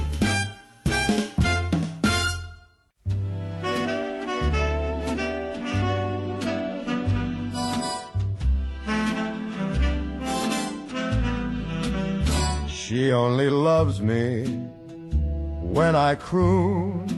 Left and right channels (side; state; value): both; identical; correlation 1.00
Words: She only loves me when I croon,